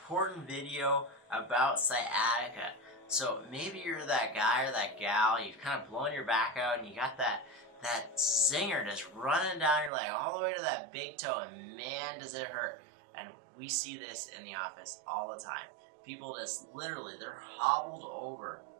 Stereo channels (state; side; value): drops out; left; at 9.9 s